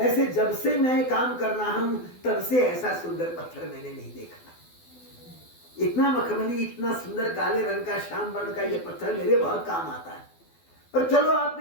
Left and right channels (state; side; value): late; right; 12 ms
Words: जब से मैं काम कर रहा हूं तब से ऐसा सुंदर पत्थर मैंने नहीं देखा। इतना मखमली, इतना सुंदर काले रंग का, श्याम वर्ण का ये पत्थर मेरे बहुत काम आता है। पर चलो,